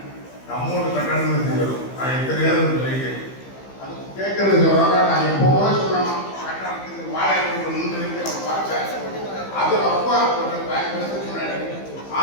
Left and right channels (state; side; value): late; right; 15 ms